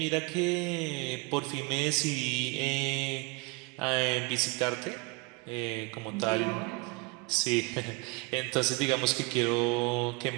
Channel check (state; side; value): quieter; left; 25.7 dB